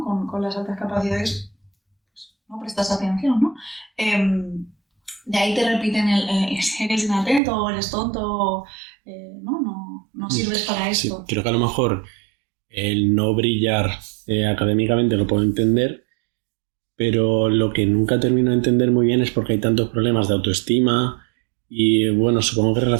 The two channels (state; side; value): drops out; left; at 7.4 s